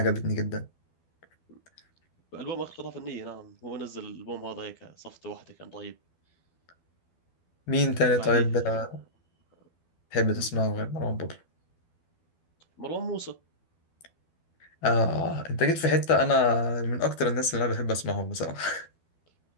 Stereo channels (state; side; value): late; right; 12 ms